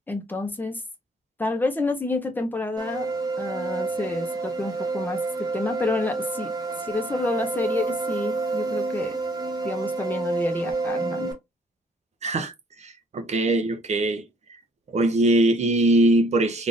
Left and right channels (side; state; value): both; normal; correlation 0.63